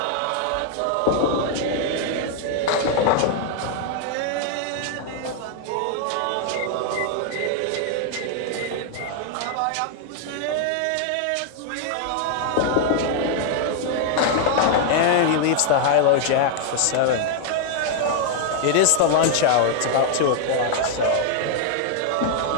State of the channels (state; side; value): different; both; correlation 0.00